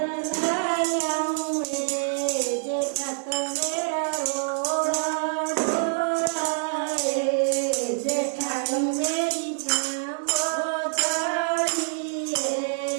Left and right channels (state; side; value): silent; left; digital silence